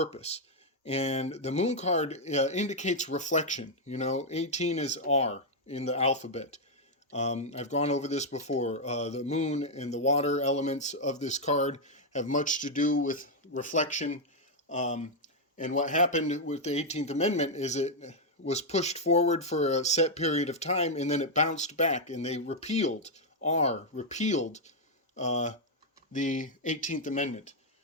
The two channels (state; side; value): normal; both; correlation -0.02